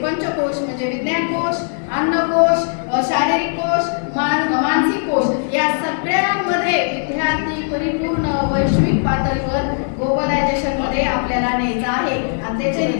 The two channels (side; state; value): right; silent; digital silence